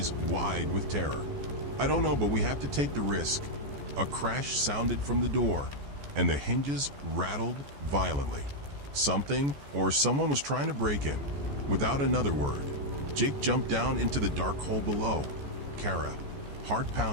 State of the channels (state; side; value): late; left; 14 ms